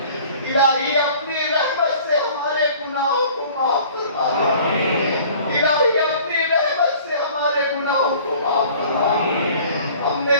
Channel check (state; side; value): inverted; both; correlation -0.49